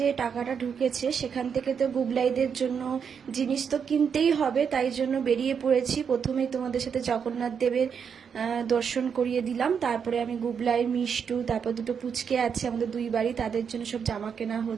টাকাটা ঢুকেছে সেখান থেকে তো গুবলাইদের জন্য জিনিস তো কিনতেই হবে, তাই জন্য বেরিয়ে পড়েছি। প্রথমেই তোমাদের সাথে জগন্নাথ দেবের দর্শন করিয়ে দিলাম, তারপরে আমি গুবলাই, মিষ্টু, তারপর দুটো পুচকে আছে আমাদের দুই বাড়ি, তাদের জন্য সব জামা কেনা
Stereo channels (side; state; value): left; quieter; 6.9 dB